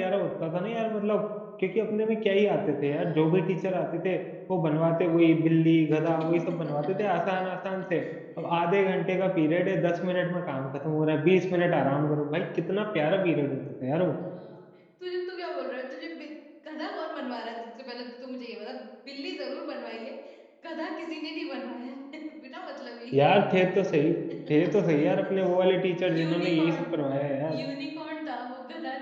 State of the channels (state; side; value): identical; both; correlation 1.00